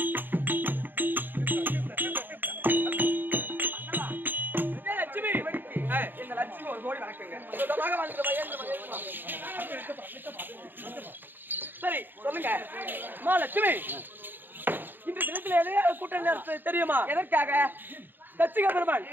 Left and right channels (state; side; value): late; left; 0.093 ms